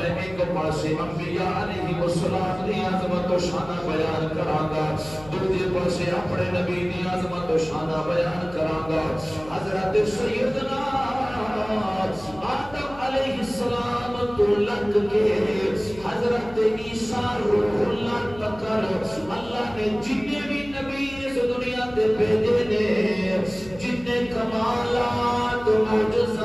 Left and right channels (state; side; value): noise; left; hum, 19 dB below the sound